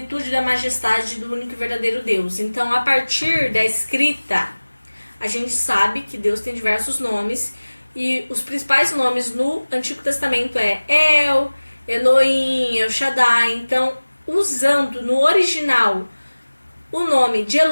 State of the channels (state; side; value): inverted; both; correlation -1.00